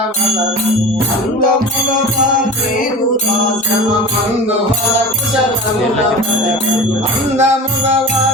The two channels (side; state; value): both; normal; correlation 0.34